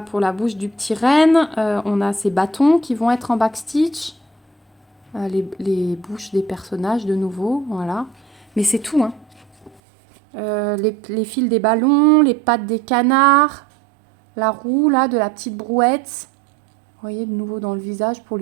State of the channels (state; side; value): drops out; left; at 9.8 s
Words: pour la bouche du petit renne. On a ces bâtons qui vont être en backstitch. Les bouches des personnages de nouveau, voilà. Mais c'est tout, hein. Les fils des ballons, les pattes des canards, la roue là de la petite brouette. Vous voyez de nouveau dans le visage pour